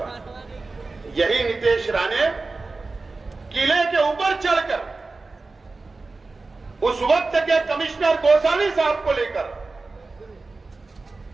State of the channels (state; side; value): quieter; left; 3.7 dB